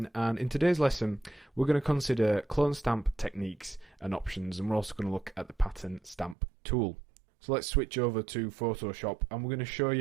and in today's lesson we're going to consider clone stamp techniques and options, and we're also going to look at the pattern stamp tool. So let's switch over to Photoshop and we're going to show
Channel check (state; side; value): drops out; left; at 6.4 s